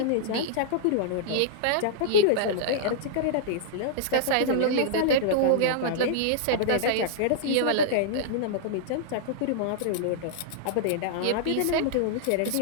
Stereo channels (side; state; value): both; different; correlation -0.02